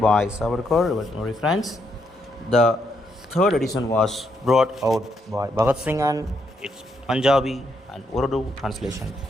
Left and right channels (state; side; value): normal; both; correlation 0.77